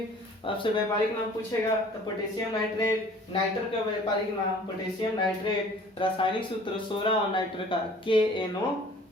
आपसे व्यापारिक नाम पूछेगा तो पोटेशियम नाइट्रेट। नाइट्रल का व्यापारिक नाम पोटेशियम नाइट्रेट। रासायनिक सूत्र सोरा और नाइट्रल का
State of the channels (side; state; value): both; normal; correlation 0.50